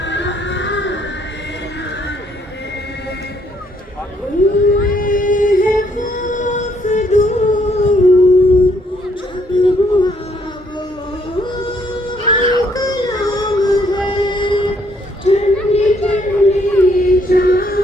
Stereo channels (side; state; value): both; normal; correlation 0.69